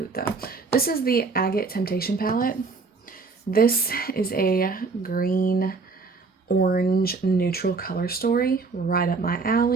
though. This is the Agate Temptation palette. This is a green, orange, neutral color story, right up my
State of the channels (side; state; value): left; quieter; 4.3 dB